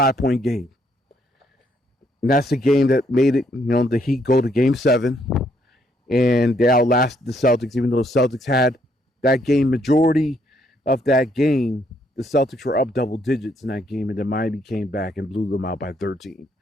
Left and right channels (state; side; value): normal; both; correlation 0.71